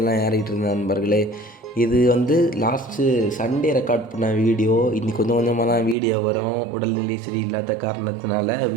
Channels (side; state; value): left; drops out; at 6.0 s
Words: ஏறிட்டு இருந்த நண்பர்களே. இது லாஸ்ட்டு சண்டே ரெக்கார்ட் பண்ண வீடியோ. இன்றைக்கி கொஞ்சம் கொஞ்சமாக தான் வீடியோ வரும். உடல்நிலை சரியில்லாத காரணத்தினால